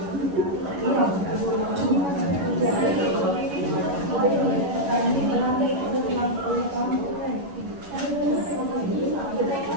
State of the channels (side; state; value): left; late; 11 ms